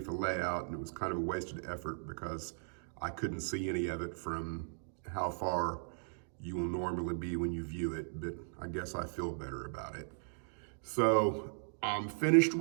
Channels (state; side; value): silent; left; digital silence